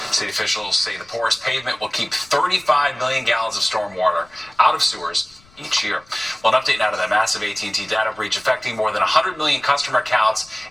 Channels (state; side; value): noise; left; rumble, 28 dB below the sound